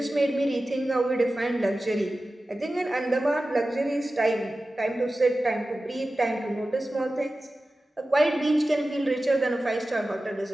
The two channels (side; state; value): both; normal; correlation 0.95